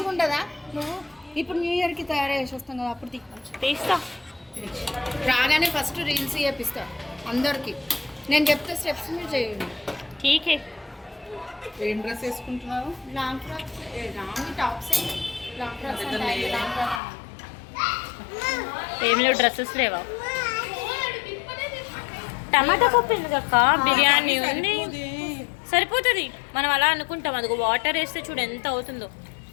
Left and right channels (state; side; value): drops out; right; at 17.0 s